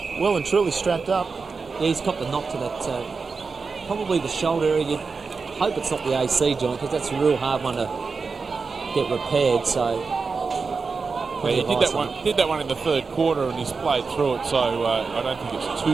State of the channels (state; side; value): quieter; left; 4.7 dB